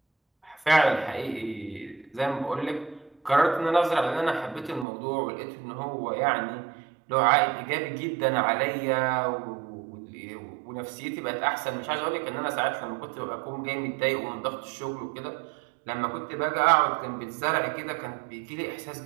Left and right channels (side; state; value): left; drops out; at 4.9 s